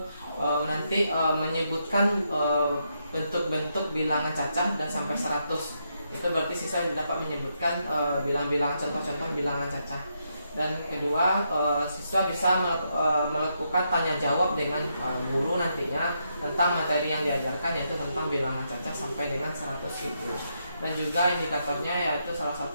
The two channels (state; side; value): inverted; both; correlation -0.80